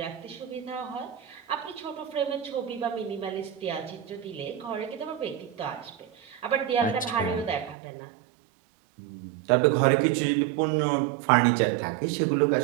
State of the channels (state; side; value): drops out; left; at 7.8 s